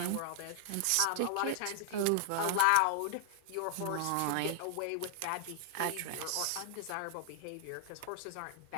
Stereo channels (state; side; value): different; both; correlation 0.00